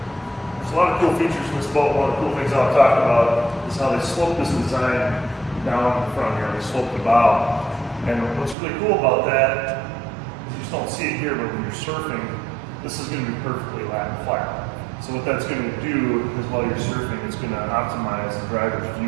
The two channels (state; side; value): drops out; left; at 8.6 s